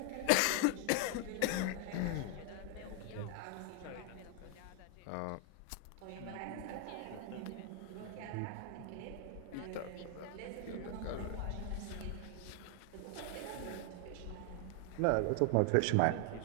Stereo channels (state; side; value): different; both; correlation 0.00